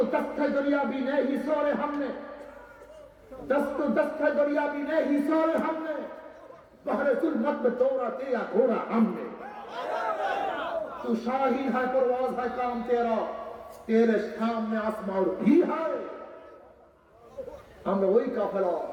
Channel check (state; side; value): identical; both; correlation 1.00